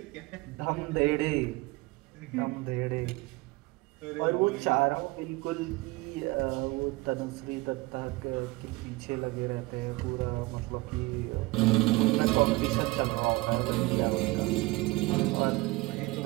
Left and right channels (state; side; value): quieter; left; 22.6 dB